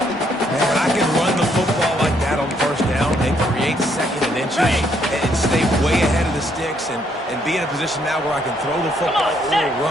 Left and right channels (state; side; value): normal; both; correlation 0.71